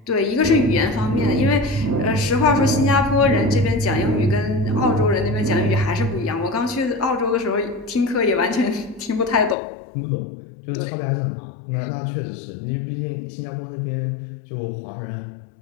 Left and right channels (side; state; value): right; drops out; at 9.6 s